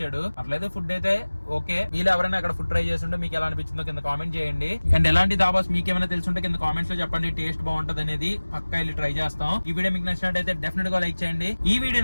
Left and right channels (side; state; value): both; inverted; correlation -1.00